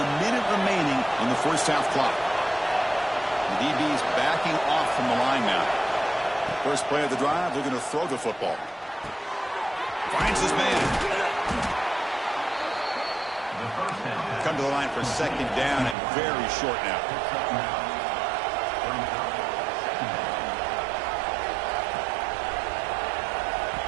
minute remaining in the first half clock. The DB's backing off from the line now. First play of the drive, they're going to throw the football. Finds his man. Come to the line for second down and very short now.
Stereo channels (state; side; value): drops out; left; at 16.0 s